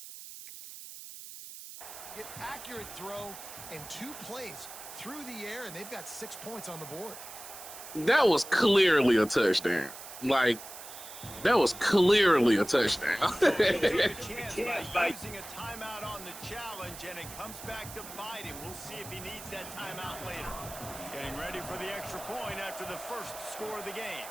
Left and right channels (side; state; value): right; noise; hiss, 13 dB below the sound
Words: Get accurate throw and 2 plays through the air, and they've got 6 points on the board. That was clearly a touchdown. Like, that was clearly a touchdown. Chance by using a timeout on the challenge, and it comes back to bite him. We'll see if he needs that timeout later. Getting ready for the extra point after the first score of the game.